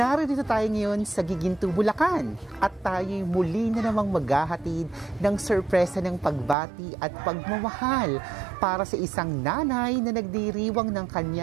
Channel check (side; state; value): left; drops out; at 6.6 s